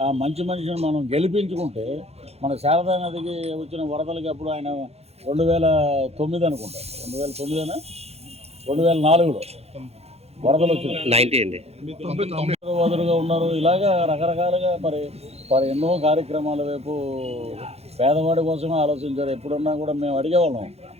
ఆ మంచి మనిషిని మనం గెలిపించుకుంటే మన శారదా నదికి వచ్చిన వరదలకి అప్పుడు ఆయన 2009 అనుకుంటా, 2009 2004లో వరదలు వచ్చింది. వదులుగా ఉన్నారు. ఇలాగా రకరకాలుగా మరి ఎన్నో కార్యక్రమాల వైపు పేదవాడి కోసమే ఆలోచించారు. ఎప్పుడున్నా కూడా మేము అడిగేవాళ్ళం,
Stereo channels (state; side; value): late; left; 0.30 ms